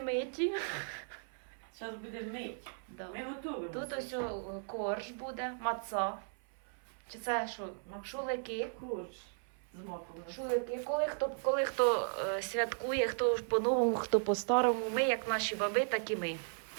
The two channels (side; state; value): left; silent; 54 dB below the other